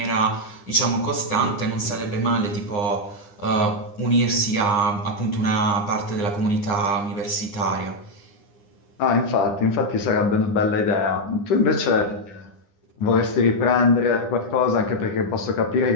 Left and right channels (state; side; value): late; right; 9.9 ms